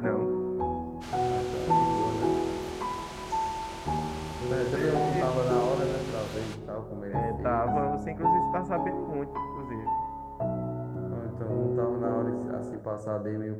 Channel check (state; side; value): identical; both; correlation 1.00